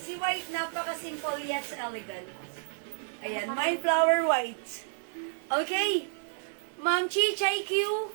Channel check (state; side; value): silent; left; digital silence